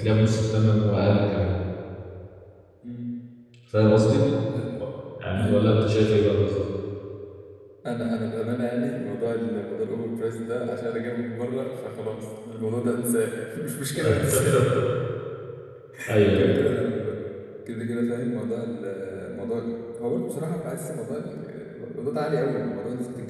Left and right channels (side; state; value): both; identical; correlation 1.00